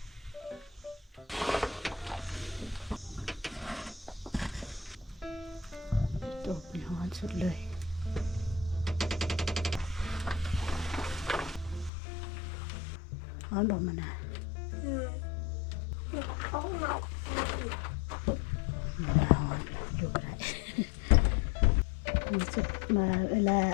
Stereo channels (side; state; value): right; drops out; at 11.9 s